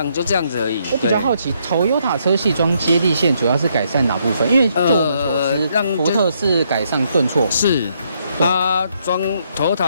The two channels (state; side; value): inverted; both; correlation -0.73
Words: 就这样子而已。我比较好奇，Toyota 车系装接地线主要是改善哪部分？因为就我们所知，福特是改善顿挫，是。它装